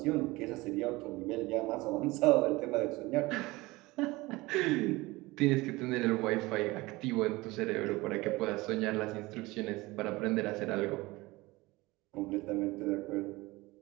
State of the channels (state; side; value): quieter; left; 21.3 dB